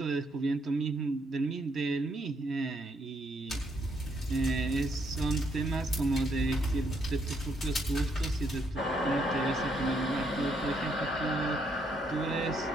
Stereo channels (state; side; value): normal; both; correlation 0.73